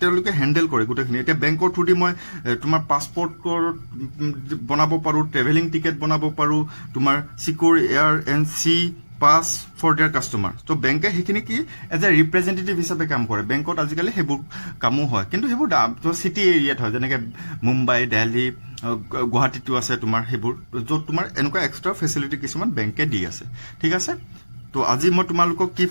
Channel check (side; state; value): both; inverted; correlation -1.00